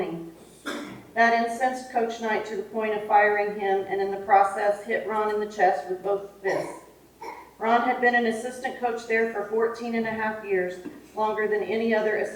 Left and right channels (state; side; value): identical; both; correlation 1.00